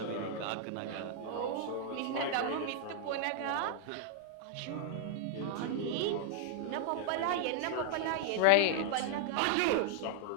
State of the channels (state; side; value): different; both; correlation -0.01